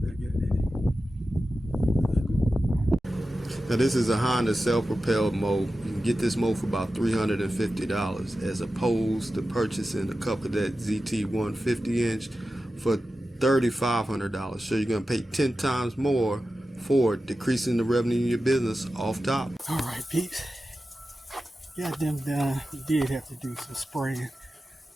back at it. Now this is a Honda self-propelled mow. You can get this mow for about $350 as opposed to purchasing a CUB Cadet ZT1 50-inch for $3,500. So you're going to pay 10 times more for decreasing the revenue in your business off top. All right, peeps. Got them done. We did have to do some spraying,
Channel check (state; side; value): normal; both; correlation 0.93